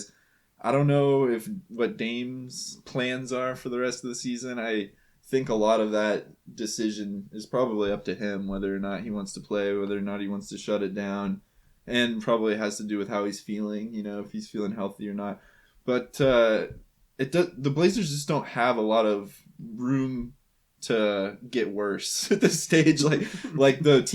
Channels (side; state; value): both; identical; correlation 1.00